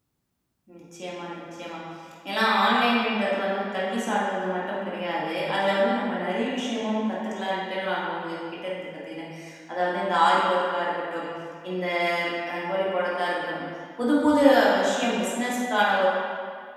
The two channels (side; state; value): both; identical; correlation 1.00